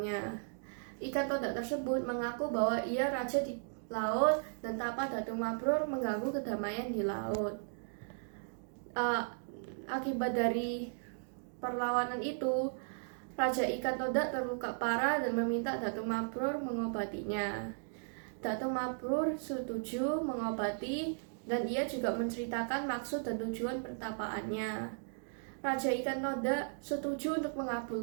Ikan toda tersebut mengaku bahwa ia raja di laut dan tapa Datu Mabrur mengganggu kedamaian di laut. Akibat dari perlawanan itu, Raja Ikan Toda terluka parah dan meminta Datu Mabrur mengobatinya. Datu Mabrur setuju mengobati dan ia juga menceritakan maksud dan tujuan pertapaannya. Raja Ikan Toda setuju untuk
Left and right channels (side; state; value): left; silent; digital silence